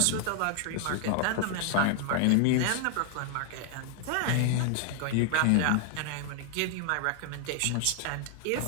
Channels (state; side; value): different; both; correlation 0.00